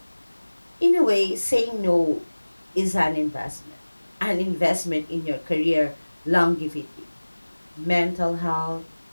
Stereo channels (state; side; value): inverted; both; correlation -1.00